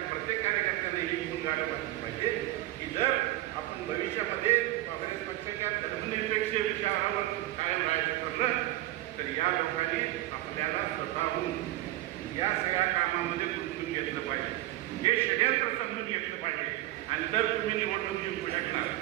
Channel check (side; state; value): left; quieter; 16.4 dB